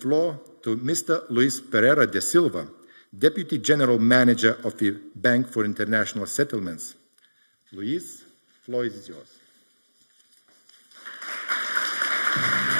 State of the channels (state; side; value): inverted; both; correlation -1.00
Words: to Mr. Luis Pereira de Silva, Deputy General Manager of the Bank for International Settlements. Luis, the floor is yours.